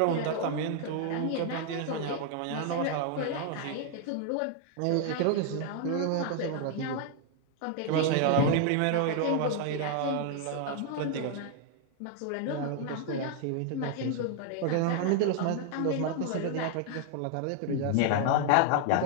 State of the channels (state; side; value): different; both; correlation 0.00